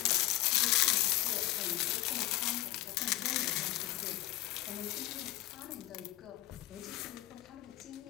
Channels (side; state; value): right; quieter; 16.6 dB